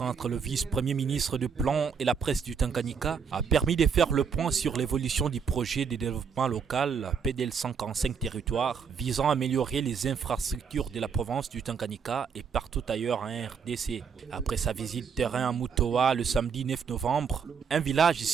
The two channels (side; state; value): left; quieter; 6.4 dB